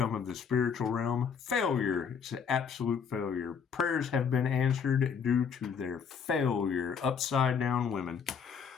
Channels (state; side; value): quieter; right; 6.7 dB